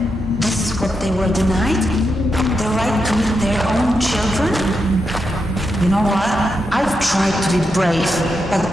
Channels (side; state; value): both; normal; correlation 0.85